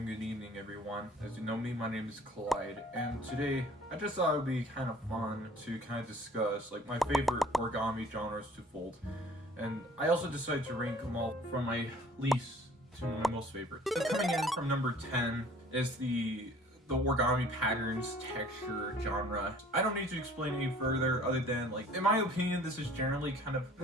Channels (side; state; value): both; normal; correlation 0.52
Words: good evening, everyone. As you know me, my name is Clyde, and today I just thought it would be kind of fun to kind of discuss like my favorite origami genres to fold, and I also decided to rank them all from my least to my most favorite. So coming in from number 10 is the origami patterns texture genre. I don't need to explain any further other than like in my opinion this is generally kind of